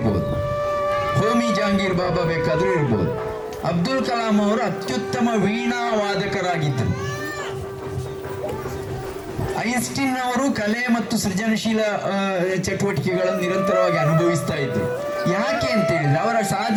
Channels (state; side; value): identical; both; correlation 1.00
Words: ಹೋಮಿ ಜಹಾಂಗೀರ್ ಬಾಬಾ ಬೇಕಾದರೂ ಇರ್ಬೋದು. ಅಬ್ದುಲ್ ಕಲಾಂ ಅವರು ಅತ್ಯುತ್ತಮ ವೀಣಾ ವಾದಕರಾಗಿದ್ದರು. ಐನ್ಸ್ಟೀನ್ ಅವರು ಕಲೆ ಮತ್ತು ಸೃಜನಶೀಲ ಚಟುವಟಿಕೆಗಳನ್ನು ನಿರಂತರವಾಗಿ ಅನುಭವಿಸ್ತಾ ಇದ್ರು. ಯಾಕೆ ಅಂತ ಹೇಳಿದ್ರೆ ಅವರ